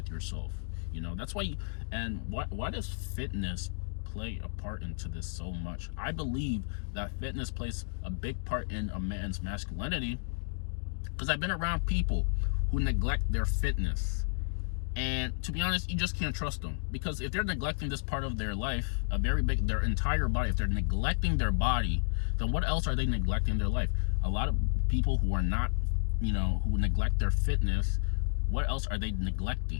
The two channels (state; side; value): silent; right; digital silence